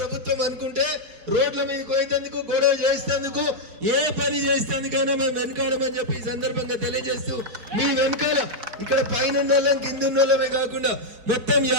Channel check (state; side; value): late; left; 4.6 ms